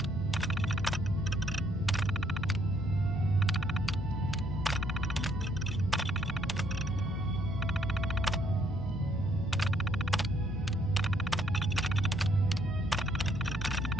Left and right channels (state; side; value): normal; both; correlation 0.68